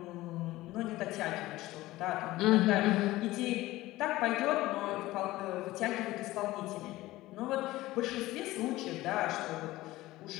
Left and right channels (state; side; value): quieter; right; 17.5 dB